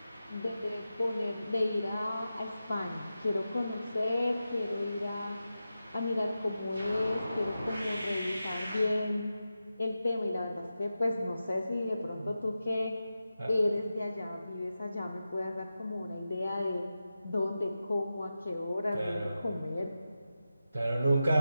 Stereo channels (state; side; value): inverted; both; correlation -0.91